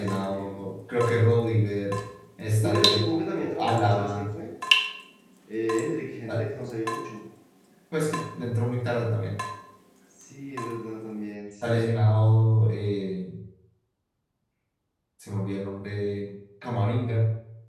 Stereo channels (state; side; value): identical; both; correlation 1.00